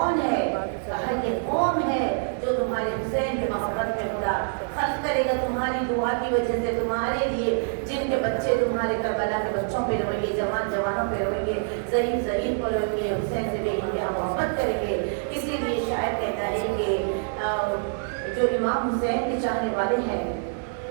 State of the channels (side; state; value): left; silent; digital silence